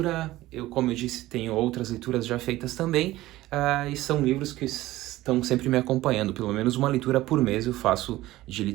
Eu, como eu disse, tenho outras leituras já feitas também, e são livros que estão sempre me acompanhando. Pelo menos uma leitura por mês eu faço de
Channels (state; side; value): quieter; left; 16.7 dB